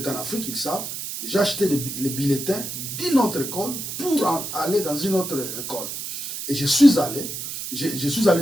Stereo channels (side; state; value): right; noise; hiss, 6 dB below the sound